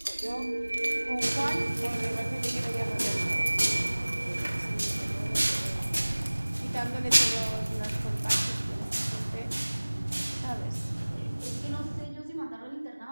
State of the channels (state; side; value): inverted; both; correlation -1.00